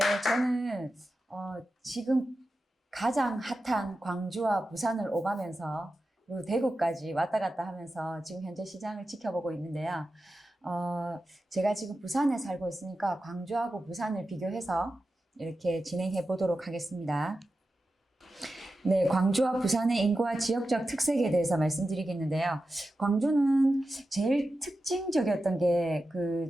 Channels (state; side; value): normal; both; correlation 0.92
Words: 저는 지금 가장 핫한 광주와 부산을 오가면서 그리고 대구까지 왔다 갔다 하면서 지금 현재 시장을 지켜보고 있는데요. 제가 지금 부산에 살고 있으니까 광주하고 부산을 비교해서 이렇게 진행해 보도록 하겠습니다. 네, 광주와 부산의 인구와 지역적 특색에 대해서 말씀드리겠는데요. 광주는 제일 특징적이었던 게 그